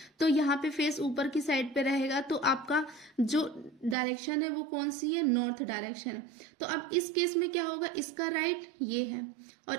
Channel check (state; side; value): drops out; left; at 4.0 s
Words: तो यहाँ पे फेस ऊपर की साइड पे रहेगा, तो आपका जो डायरेक्शन है वो कौन सी है, नॉर्थ डायरेक्शन है। तो अब इस केस में क्या होगा, इसका राइट ये है